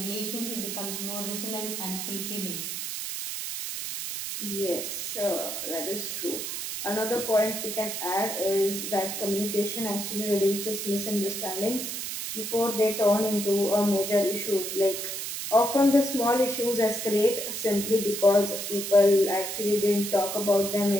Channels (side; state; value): right; noise; hiss, 5 dB below the sound